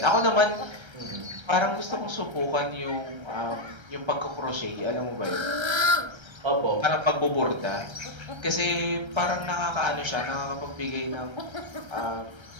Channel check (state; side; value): late; left; 1.3 ms